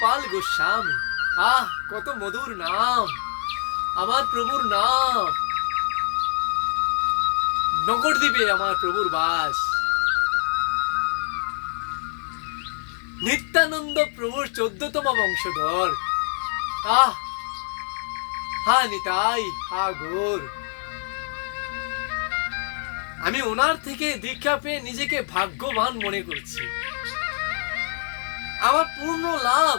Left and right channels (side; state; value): right; silent; digital silence